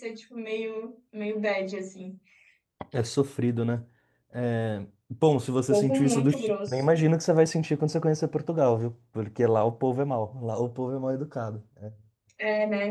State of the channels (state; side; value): identical; both; correlation 1.00